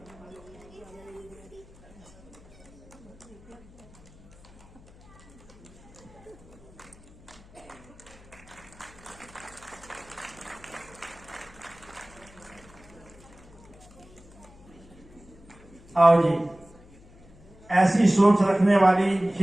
आओ जी। ऐसी सोच रखने वाली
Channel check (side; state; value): left; noise; hum, 23 dB below the sound